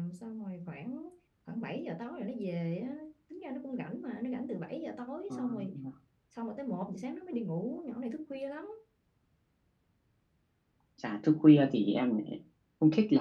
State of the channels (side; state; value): both; identical; correlation 1.00